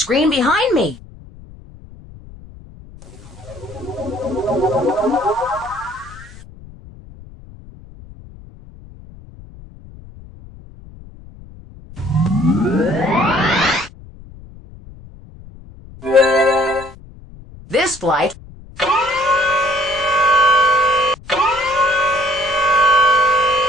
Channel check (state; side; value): noise; left; rumble, 19 dB below the sound